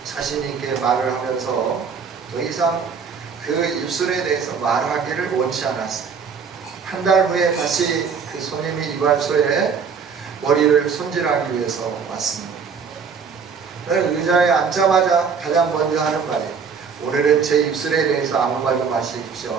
자신있게 말을 하면서 더 이상 그 입술에 대해서 말하기를 원치 않았어요. 한 달 후에 다시 그 손님이 이발소에 머리를 손질하기 위해서 왔습니다. 의자에 앉자마자 가장 먼저 하는 말이에요. 오늘은 제 입술에 대해서 아무 말도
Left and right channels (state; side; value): quieter; left; 6.0 dB